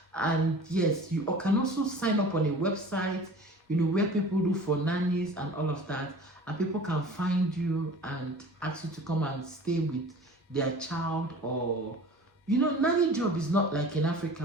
And yes, you can also sign up on a website, where people look for nannies and all of that, and people can find you and ask you to come and stay with their child. Or nanny job is not like in Africa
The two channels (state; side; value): normal; both; correlation 0.42